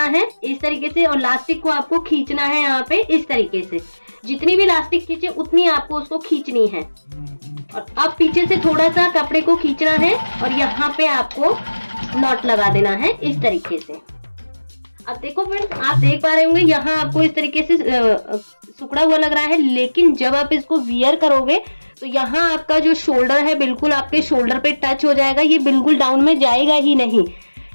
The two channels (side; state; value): both; inverted; correlation -1.00